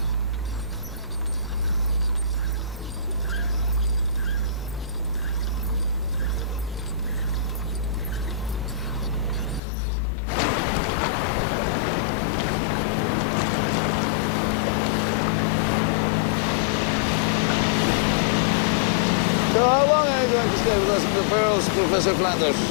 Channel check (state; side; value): drops out; right; at 9.6 s